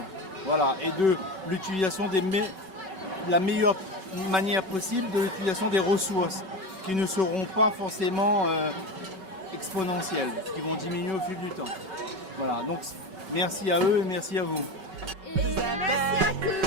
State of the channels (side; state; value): left; late; 5.3 ms